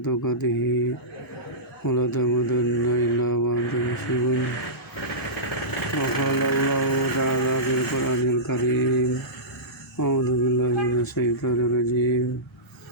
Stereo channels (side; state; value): both; normal; correlation -0.18